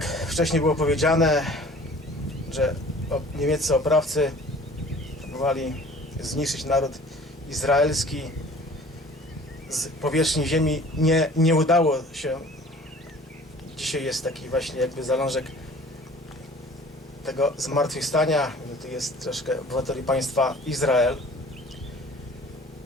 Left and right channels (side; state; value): both; normal; correlation 0.48